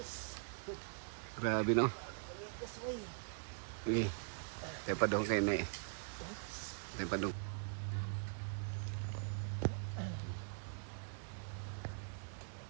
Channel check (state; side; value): silent; left; digital silence